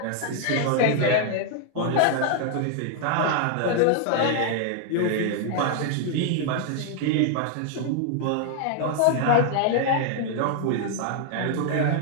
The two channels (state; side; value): different; both; correlation 0.00